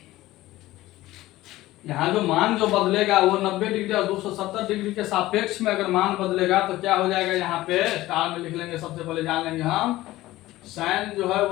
यहाँ जो मान जो बदलेगा वो 90 डिग्री और 270 डिग्री के सापेक्ष में अगर मान बदलेगा तो क्या हो जाएगा, यहाँ पे स्टार में लिख लेंगे। सबसे पहले जान लेंगे हम, साइन जो है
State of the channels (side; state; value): right; quieter; 16.8 dB